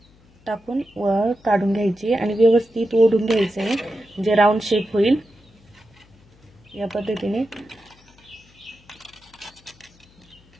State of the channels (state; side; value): noise; left; hum, 29 dB below the sound